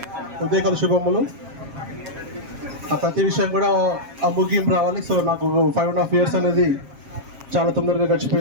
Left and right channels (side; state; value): left; late; 7.4 ms